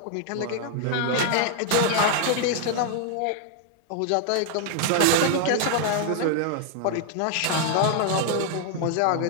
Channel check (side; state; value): both; different; correlation 0.00